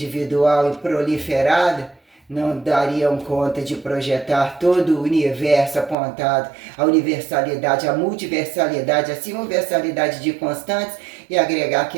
e proliferada, não dariam conta de projetar todo o universo apontado à universalidade, à multiversalidade, à simulversalidade de constantes e agregar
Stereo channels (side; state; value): left; drops out; at 6.0 s